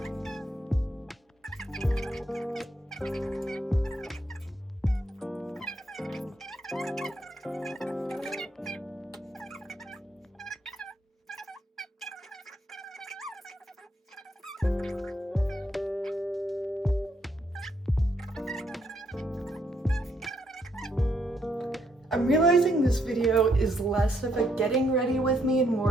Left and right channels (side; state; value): both; normal; correlation 0.74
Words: I'm realizing this video is less of a getting ready with me and